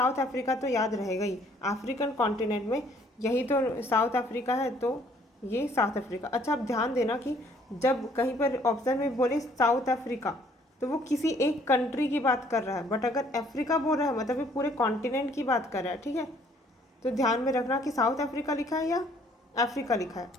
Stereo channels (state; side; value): normal; both; correlation 0.61